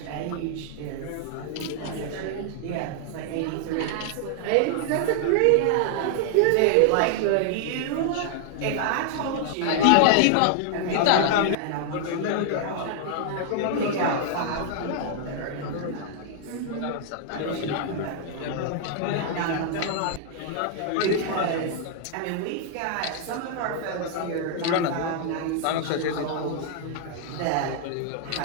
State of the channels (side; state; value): both; different; correlation 0.00